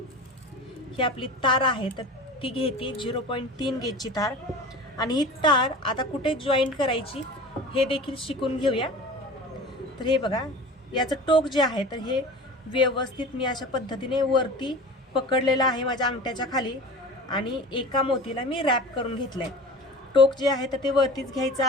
ही आपली तार आहे तर ती घेते 0.3 गेजची तार आणि ही तार आता कुठे जॉईंट करायची हे देखील शिकून घेऊया. तर हे बघा याचं टोक जे आहे तर हे व्यवस्थित मी अशा पद्धतीने वरती पकडलेलं आहे माझ्या अंगठ्याच्या खाली आणि एका मोतीला मी रॅप करून घेतलंय. टोक जे आहे तर ते वरतीच घ्यायचं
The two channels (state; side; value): normal; both; correlation 0.36